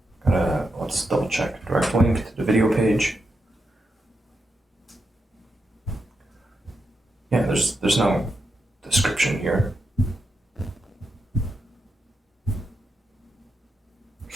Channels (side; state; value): both; normal; correlation 0.85